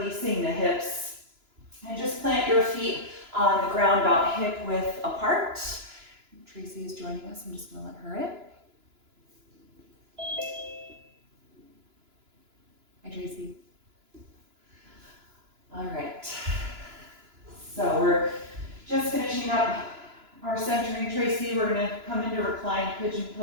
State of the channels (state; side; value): late; left; 2.9 ms